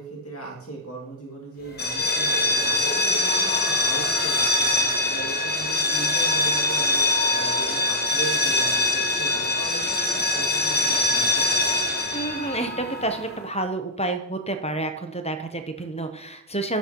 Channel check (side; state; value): both; normal; correlation -0.10